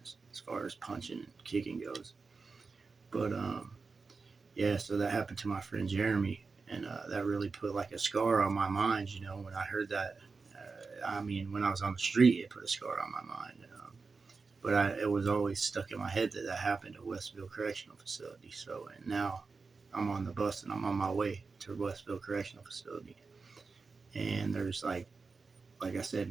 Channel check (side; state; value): left; quieter; 4.5 dB